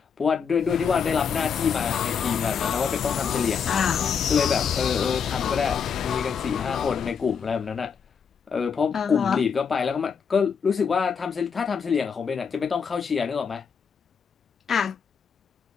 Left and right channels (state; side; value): quieter; right; 6.5 dB